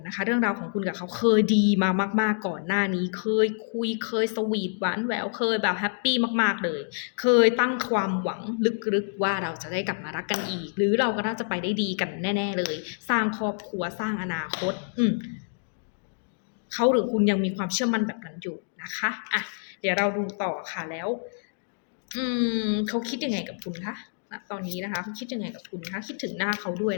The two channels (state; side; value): silent; right; digital silence